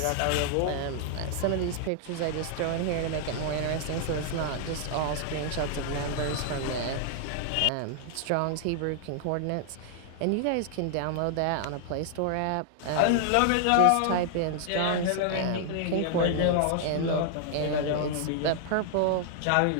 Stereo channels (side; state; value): both; different; correlation 0.00